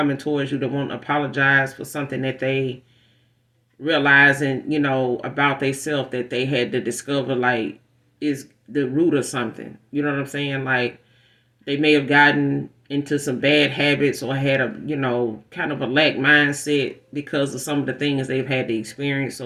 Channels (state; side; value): identical; both; correlation 1.00